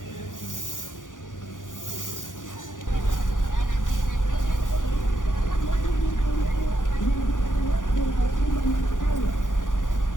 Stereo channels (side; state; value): right; late; 0.88 ms